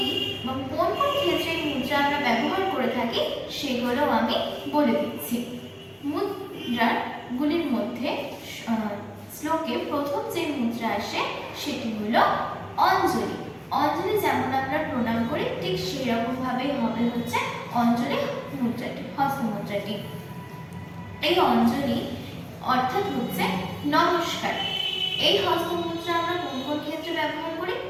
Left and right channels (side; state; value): both; identical; correlation 1.00